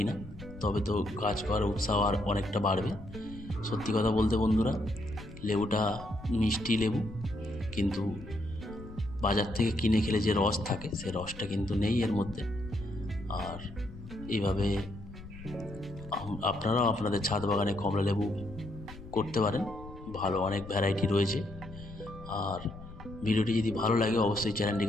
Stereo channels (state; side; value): noise; left; rumble, 15 dB below the sound